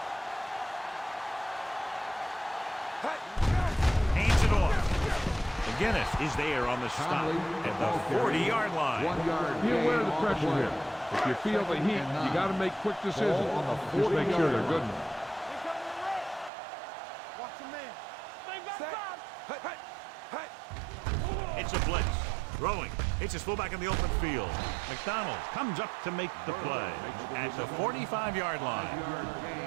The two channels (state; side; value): drops out; left; at 16.5 s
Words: Hands it off. McGinnis is there on the stop at the 40-yard line. 1 yard. Be aware of the pressure here. If you feel the heat, you got to make quick decisions. Just make sure they're good enough. Watch the man. Set. It's a blitz. Throwing. It's his fullback in the open field. McDonald comes up to make the play at the 45-yard